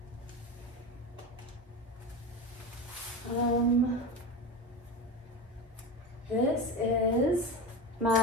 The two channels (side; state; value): both; normal; correlation 0.23